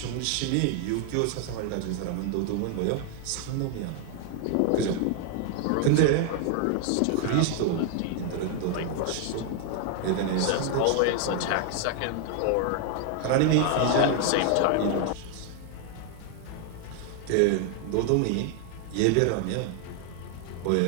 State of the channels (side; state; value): both; different; correlation 0.00